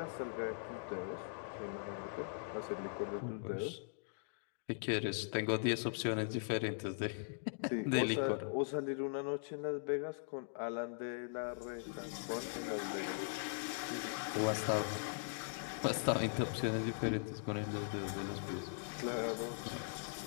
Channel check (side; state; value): right; silent; digital silence